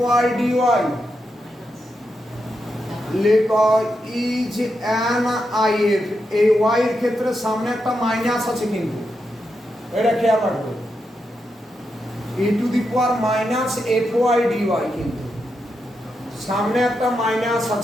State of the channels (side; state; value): both; normal; correlation 0.85